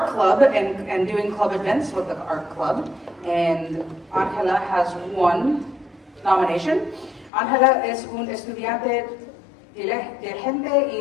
and doing club events with the art club. And Angela has 1 nomination. Angela es un estudiante diligente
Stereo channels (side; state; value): right; drops out; at 7.3 s